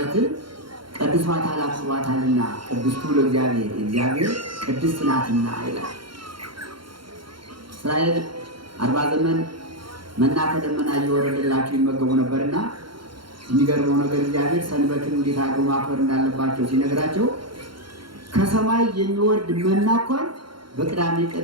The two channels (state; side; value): late; left; 0.73 ms